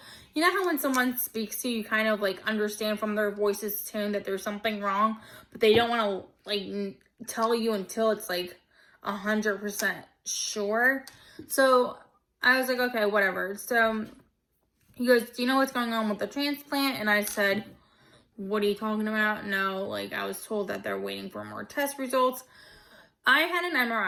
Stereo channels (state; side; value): identical; both; correlation 1.00